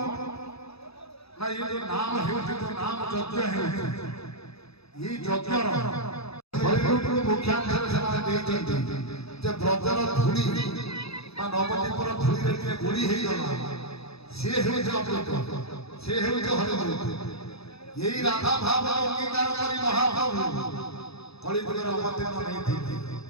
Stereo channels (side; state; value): right; late; 0.78 ms